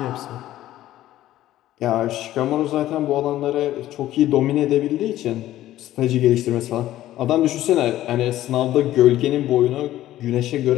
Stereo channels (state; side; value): quieter; right; 14.1 dB